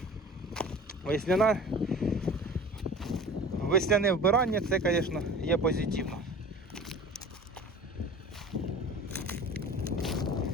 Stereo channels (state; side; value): normal; both; correlation 0.40